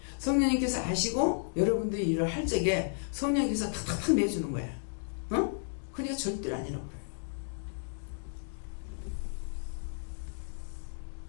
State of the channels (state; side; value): silent; right; digital silence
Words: 성령님께서 아시고 여러분들이 일을 할 적에 성령님께서 탁탁탁 내주는 거야. 어? 그러니까 절대로 아니라고 그래요.